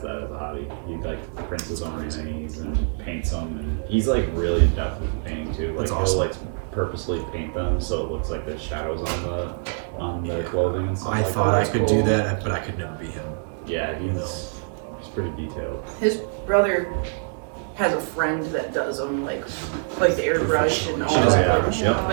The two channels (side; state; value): left; silent; 62 dB below the other